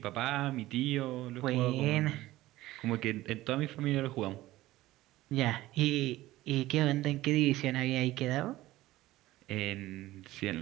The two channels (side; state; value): left; quieter; 16.7 dB